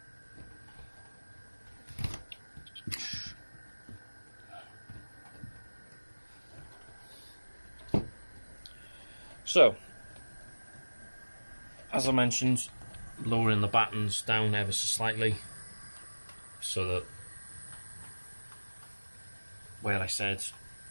So, as I mentioned, lowering the battens down ever so slightly, so that where I said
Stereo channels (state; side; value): inverted; both; correlation -1.00